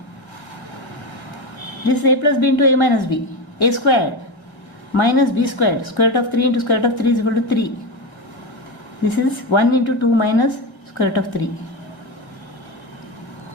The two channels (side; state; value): right; late; 1.7 ms